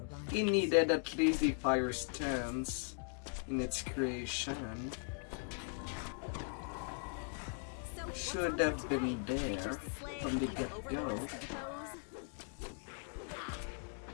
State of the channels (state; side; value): silent; right; 52 dB below the other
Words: It needed at least the fire stance in its creation. Should have been there from the get-go.